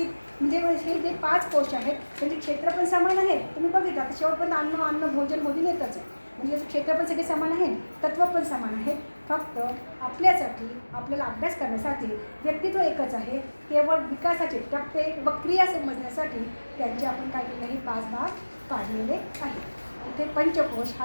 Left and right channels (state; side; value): inverted; both; correlation -1.00